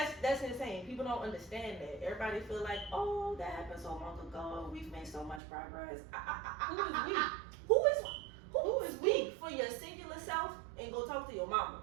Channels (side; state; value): left; drops out; at 5.4 s